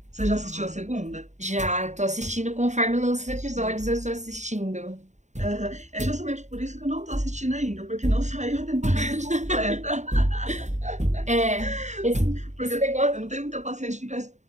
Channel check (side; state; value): left; late; 0.34 ms